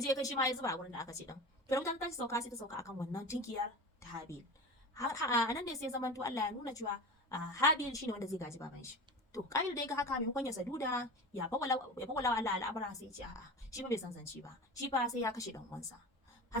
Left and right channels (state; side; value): normal; both; correlation 0.31